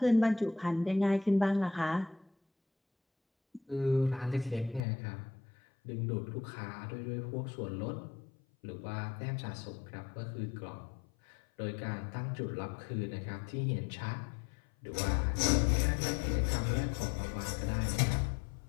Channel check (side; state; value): right; drops out; at 4.9 s